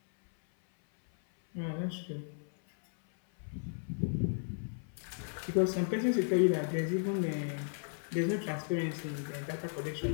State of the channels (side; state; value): right; silent; 55 dB below the other